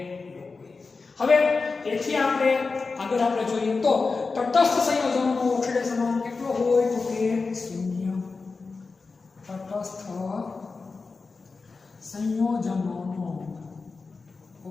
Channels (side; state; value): right; quieter; 4.2 dB